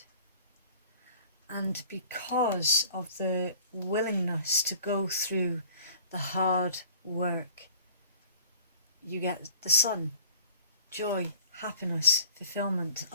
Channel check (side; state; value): both; inverted; correlation -0.49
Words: And because of the willingness to go through the hard work, you get the sun, joy, happiness, fulfillment,